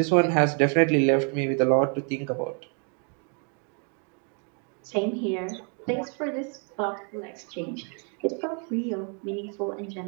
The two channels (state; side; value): quieter; left; 39.9 dB